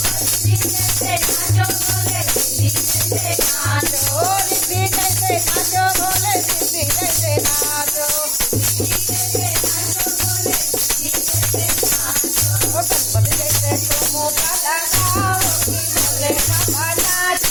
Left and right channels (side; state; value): both; normal; correlation 0.95